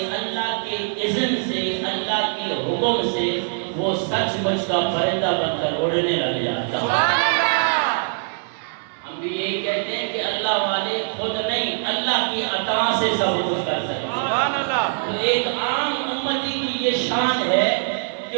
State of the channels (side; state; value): left; silent; digital silence